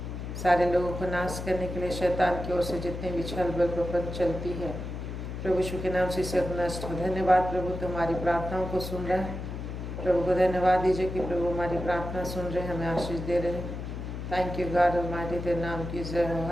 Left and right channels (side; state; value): left; noise; hum, 6 dB below the sound